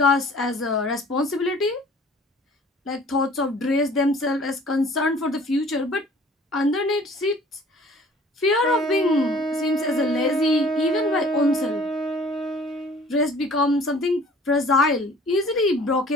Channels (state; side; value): normal; both; correlation 0.51